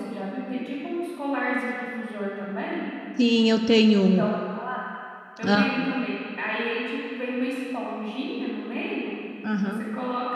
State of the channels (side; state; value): both; identical; correlation 1.00